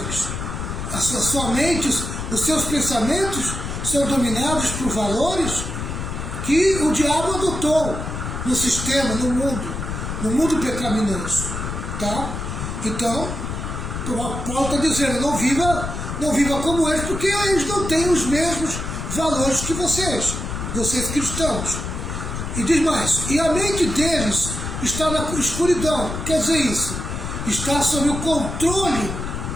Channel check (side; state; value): left; noise; rumble, 5 dB below the sound